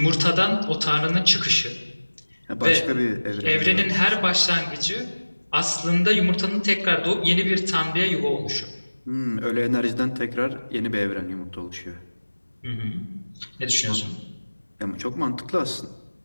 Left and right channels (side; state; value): both; inverted; correlation -1.00